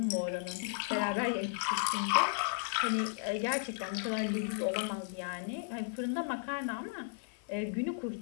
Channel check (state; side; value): silent; right; 55 dB below the other